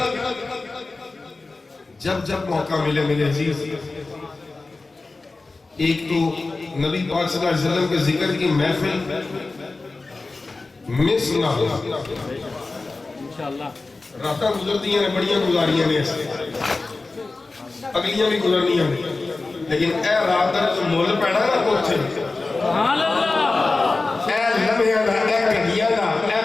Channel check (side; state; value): right; quieter; 3.5 dB